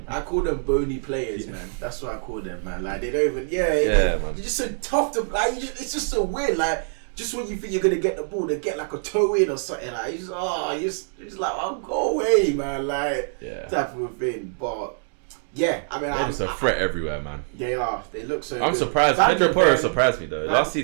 I call them bony players, man. That's what I call them, man. Like they don't even. They're just so tough to. Like it's just so weird. Like just when you think you're gonna get the ball, they get like a toe in or something. Like you're just like, oh, go away, man. Like type of a thing. But yeah, I mean, they're just a threat everywhere, man. They are. They look so. I'm surprised. Pedro Porro surprised me though. Last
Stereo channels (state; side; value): silent; left; digital silence